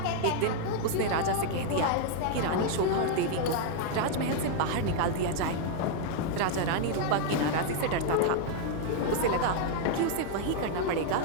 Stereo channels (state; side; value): different; both; correlation 0.00